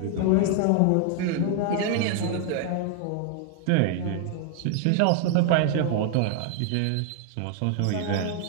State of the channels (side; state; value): both; different; correlation 0.00